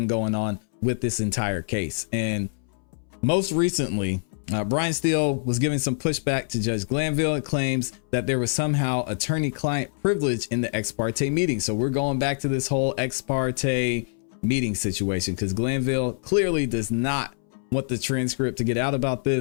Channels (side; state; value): right; silent; 62 dB below the other